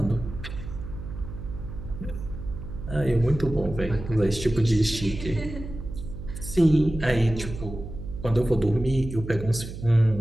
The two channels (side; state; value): right; noise; hum, 10 dB below the sound